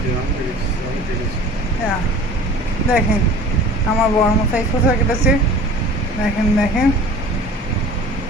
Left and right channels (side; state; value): both; normal; correlation 0.43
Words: হ্যাঁ দেখেন আমার বড়মশাই শসা কেটেছে, দেখেন দেখেন।